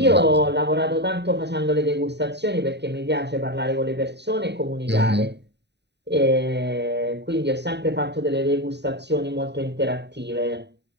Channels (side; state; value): left; late; 0.50 ms